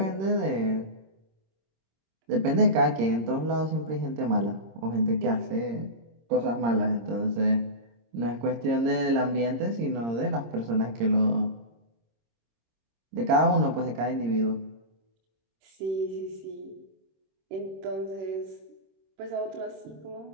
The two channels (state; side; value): late; left; 26 ms